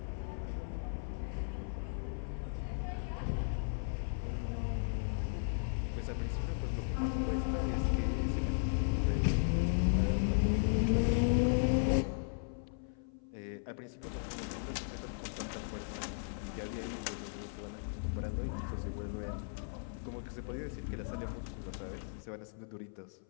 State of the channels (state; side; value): silent; right; 53 dB below the other